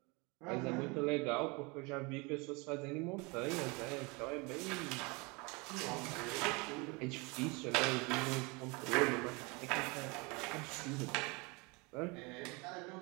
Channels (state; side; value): quieter; left; 27.7 dB